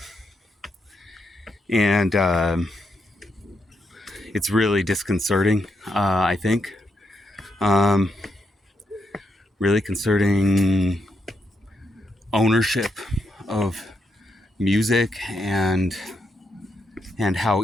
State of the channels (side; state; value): both; normal; correlation 0.81